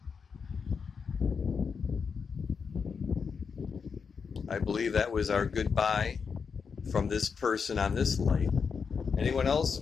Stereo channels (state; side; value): quieter; right; 5.9 dB